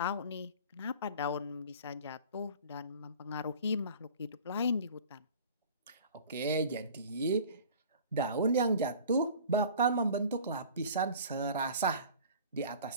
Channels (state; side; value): inverted; both; correlation -0.44